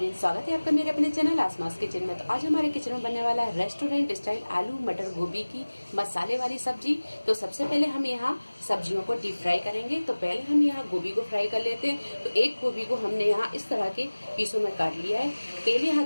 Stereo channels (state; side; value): inverted; both; correlation -1.00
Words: स्वागत है आपका मेरे अपने चैनल आसमास किचन में। तो आज हमारे किचन में बनने वाला है रेस्टोरेंट स्टाइल आलू मटर गोभी की मसाले वाली सब्जी। तो सबसे पहले हम यहाँ सब्जियों को डीप फ्राई करेंगे। तो पहले हम यहाँ गोभी को फ्राई कर लेते हैं। तो एक गोभी को हमने यहाँ इस तरह के पीसों में काट लिया है। तेल